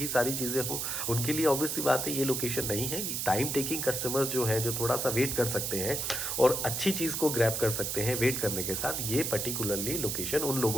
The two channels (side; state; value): right; noise; hiss, 1 dB below the sound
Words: सारी चीज़ें हो, उनके लिए ऑब्वियस सी बात है ये लोकेशन नहीं है। कि टाइम टेकिंग कस्टमर्स जो हैं, जो थोड़ा सा वेट कर सकते हैं और अच्छी चीज़ को ग्रैब कर सकते हैं वेट करने के साथ, ये पर्टिकुलरली लोकेशन उन